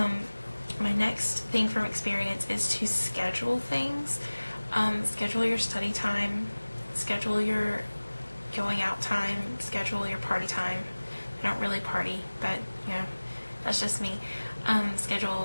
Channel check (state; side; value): inverted; both; correlation -1.00